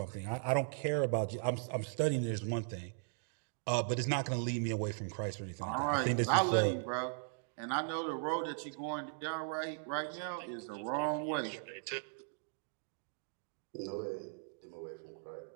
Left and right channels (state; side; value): silent; left; digital silence